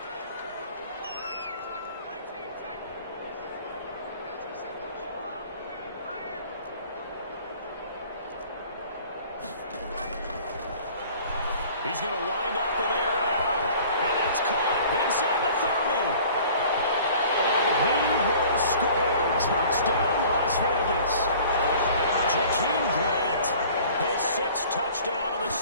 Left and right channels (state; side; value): inverted; both; correlation -0.49